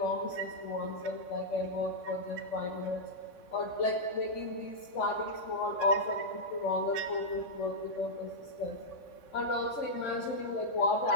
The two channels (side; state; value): right; late; 3.5 ms